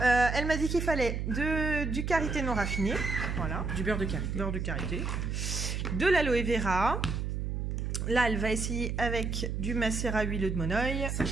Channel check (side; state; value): right; noise; hum, 2 dB below the sound